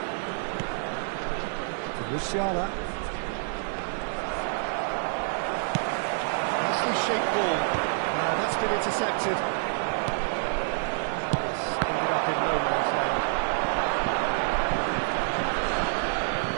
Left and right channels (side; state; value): left; silent; 60 dB below the other